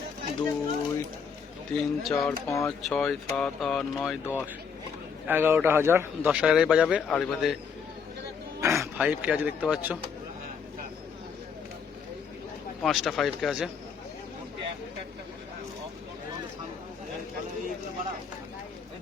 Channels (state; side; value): quieter; right; 6.3 dB